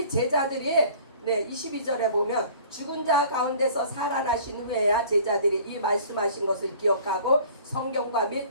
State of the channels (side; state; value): both; inverted; correlation -0.49